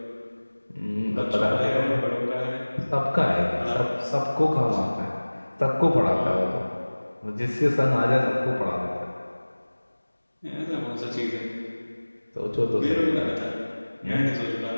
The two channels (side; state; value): both; inverted; correlation -1.00